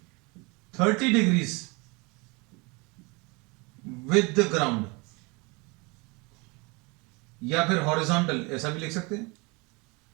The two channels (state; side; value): quieter; left; 27.8 dB